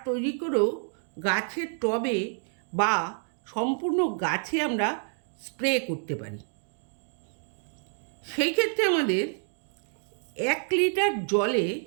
তৈরি করেও গাছের টবে বা সম্পূর্ণ গাছে আমরা স্প্রে করতে পারি। সেই ক্ষেত্রে আমাদের 1 লিটার জলে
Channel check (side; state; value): left; silent; 57 dB below the other